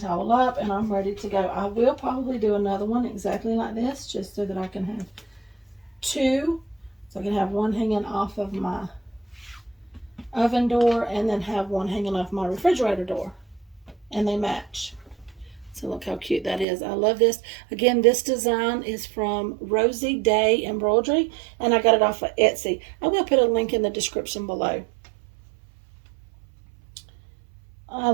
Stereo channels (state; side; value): drops out; left; at 16.7 s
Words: up and I'm ready to go. I will probably do another one exactly like this, just so that I can have two. So I can have one hanging off of my oven door and then have one hanging off my refrigerator door. And they match. So look how cute that is. I love this. Again, this design is from Rosie Day Embroidery, and I got it off of Etsy. I will put a link in the description below. I